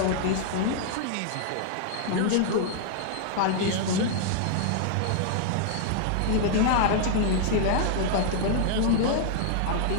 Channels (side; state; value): both; different; correlation -0.01